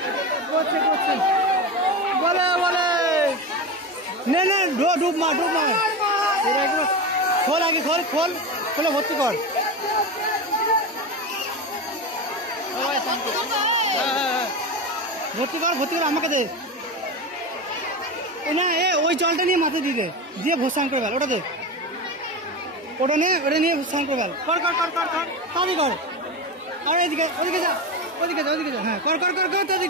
করছে করছে, বলে বলে নে নে, ডুব মার ডুব মার। খোল আগে, খোল খোল খোলে ভর্তি কর। ভর্তি কর ভর্তি কর, আমাকে দে। না ওই জলটা নিয়ে মাথায় দিয়ে দে, দিয়ে ভোসান করে ফেল। ওটা দে, ওটা নিয়ে ভোসান করে ফেল। কর কর কর কর কর, তাড়াতাড়ি কর। আর এদিকে ওদিকে যা ওদিকে যা ওদিকে যা হ্যাঁ কর কর কর কর তাড়াতাড়ি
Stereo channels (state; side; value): normal; both; correlation 0.21